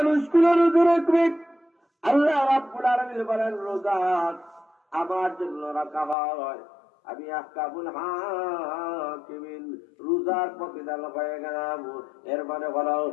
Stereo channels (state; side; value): drops out; right; at 6.2 s